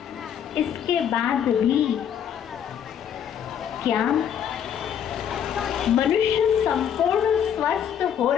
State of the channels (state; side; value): quieter; right; 8.8 dB